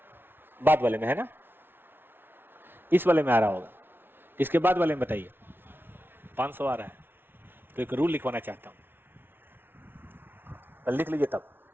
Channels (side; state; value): left; late; 0.10 ms